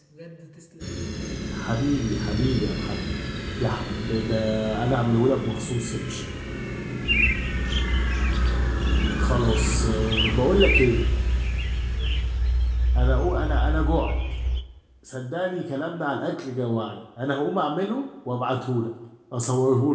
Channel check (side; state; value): both; identical; correlation 1.00